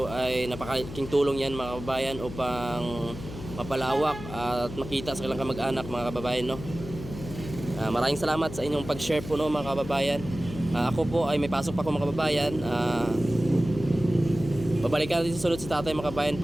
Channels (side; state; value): left; noise; hum, 11 dB below the sound